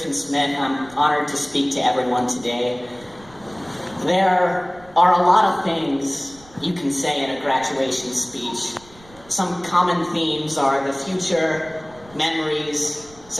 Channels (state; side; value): noise; right; rumble, 24 dB below the sound